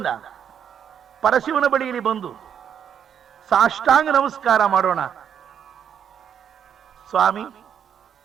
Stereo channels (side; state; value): left; quieter; 8.5 dB